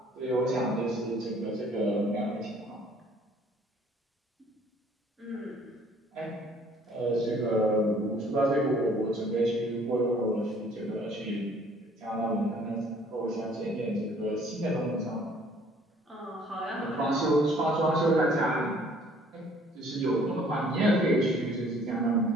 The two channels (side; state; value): both; normal; correlation 0.57